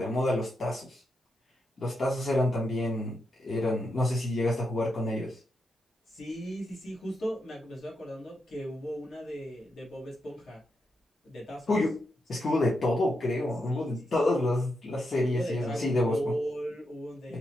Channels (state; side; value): normal; both; correlation 0.84